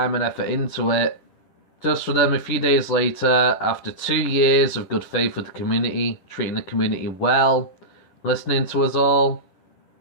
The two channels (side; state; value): right; late; 10 ms